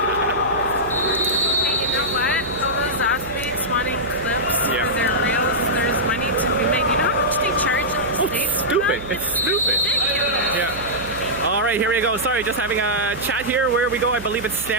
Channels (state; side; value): noise; right; hum, 15 dB below the sound